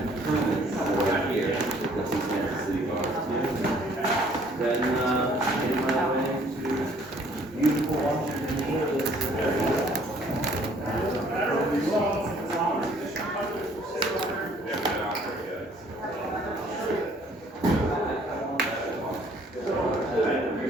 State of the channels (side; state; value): both; normal; correlation 0.59